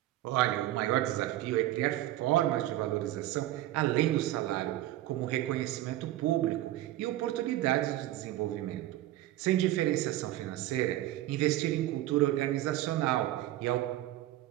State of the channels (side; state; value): left; quieter; 14.9 dB